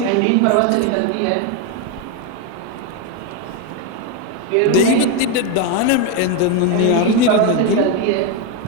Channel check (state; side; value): different; both; correlation 0.02